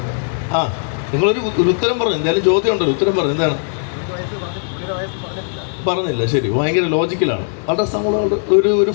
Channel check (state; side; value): silent; right; 67 dB below the other